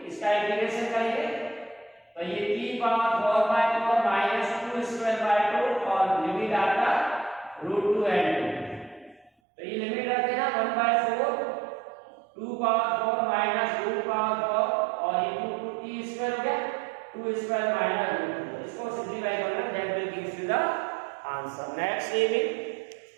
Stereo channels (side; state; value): left; drops out; at 9.3 s